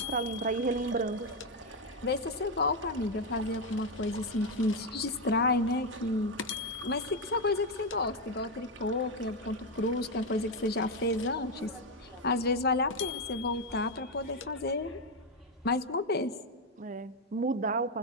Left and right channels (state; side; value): normal; both; correlation 0.06